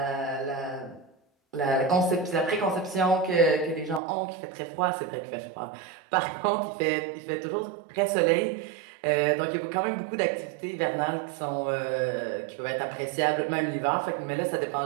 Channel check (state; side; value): drops out; left; at 4.0 s